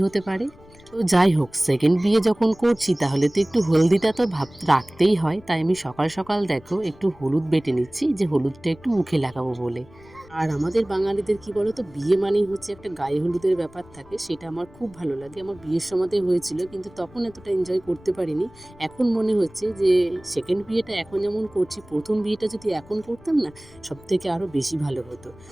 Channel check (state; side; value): noise; left; rumble, 24 dB below the sound